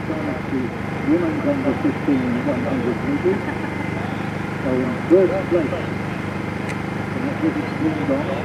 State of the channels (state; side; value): identical; both; correlation 1.00